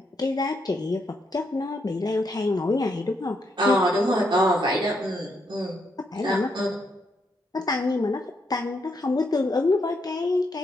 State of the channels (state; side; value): normal; both; correlation 0.78